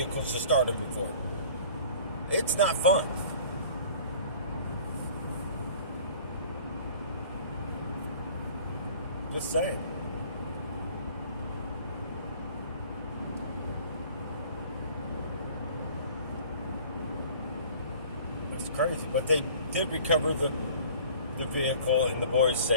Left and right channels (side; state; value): both; inverted; correlation -0.48